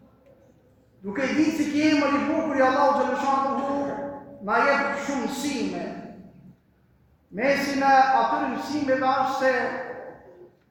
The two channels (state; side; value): identical; both; correlation 1.00